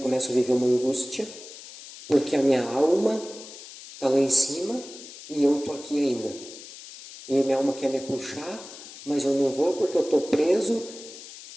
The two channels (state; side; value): noise; left; hiss, 15 dB below the sound